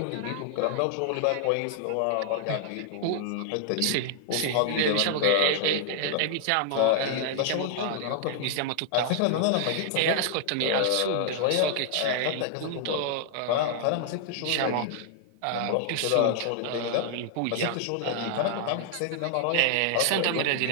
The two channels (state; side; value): different; both; correlation 0.00